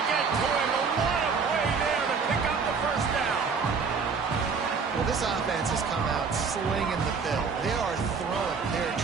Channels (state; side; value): quieter; left; 5.3 dB